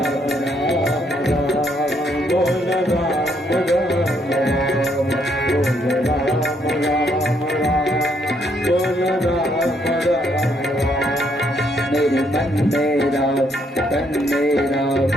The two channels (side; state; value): both; normal; correlation 0.71